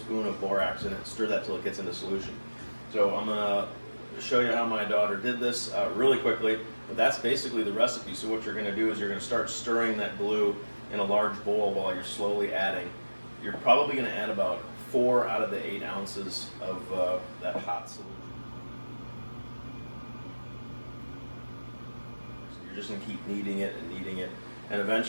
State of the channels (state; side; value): inverted; both; correlation -1.00